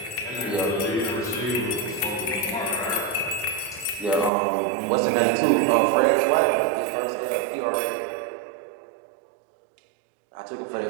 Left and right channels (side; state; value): left; drops out; at 4.3 s